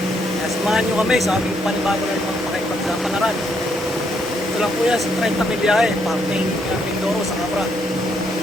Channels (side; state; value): both; normal; correlation 0.74